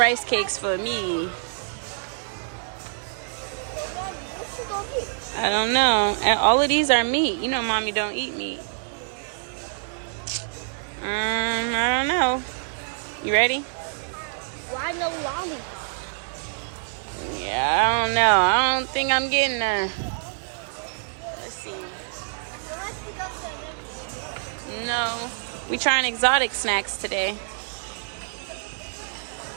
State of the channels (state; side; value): silent; left; digital silence